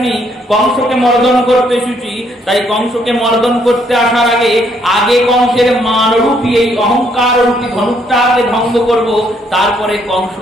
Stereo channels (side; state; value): both; normal; correlation 0.69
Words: কংসকে মর্দন করতে এসেছি। তাই কংসকে মর্দন করতে আসার আগে কংসের মানরূপী এই অহংকার রূপী ধনুকটাকে ভঙ্গ করব, তারপরে